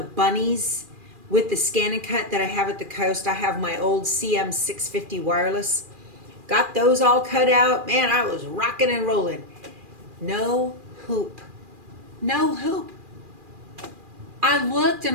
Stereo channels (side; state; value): left; late; 2.4 ms